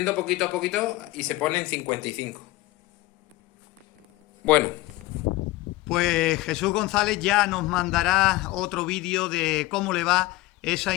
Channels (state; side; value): quieter; right; 18.6 dB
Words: poquito a poquito y se pone en 55. Bueno. Pues Jesús González ya nos mandará otro vídeo de cómo le va esa